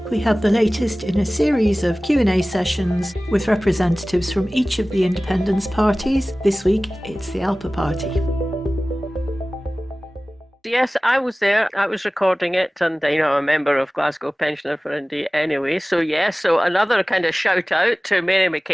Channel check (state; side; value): normal; both; correlation 0.98